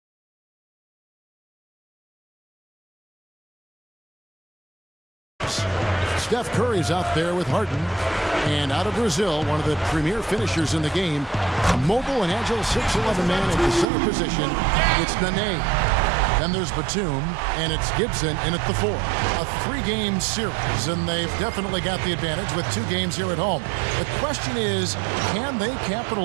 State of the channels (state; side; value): drops out; left; at 13.9 s